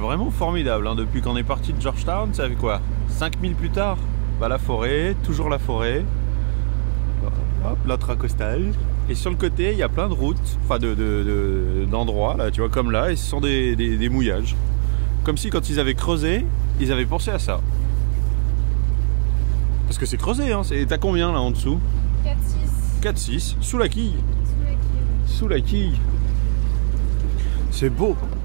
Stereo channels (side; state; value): left; silent; 59 dB below the other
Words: formidable. Hein. Depuis qu'on est parti de Georgetown, ça fait quoi 5000 plus tard, bah, la forêt, toujours la forêt. Hop, l'intracostal. Et sur le côté, il y a plein de routes, enfin d'endroits, là, tu vois, comme là, et ce sont des mouillages. Comme si quand ils avaient creusé, ils avaient pensé à ça. Parce que c'est creusé, hein, t'as combien là en dessous? 4,6. 4,6, sous la quille. Sous la quille. C'est beau.